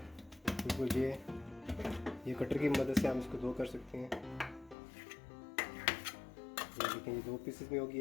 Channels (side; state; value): right; drops out; at 4.8 s